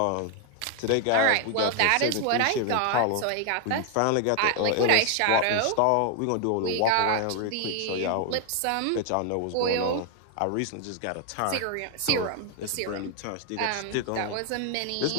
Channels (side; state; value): both; different; correlation 0.00